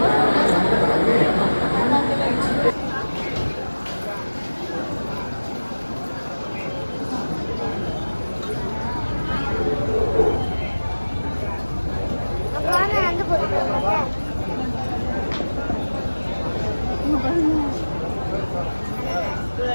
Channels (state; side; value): inverted; both; correlation -1.00